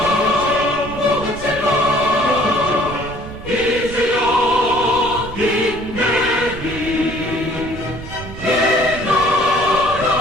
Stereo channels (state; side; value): noise; right; rumble, 13 dB below the sound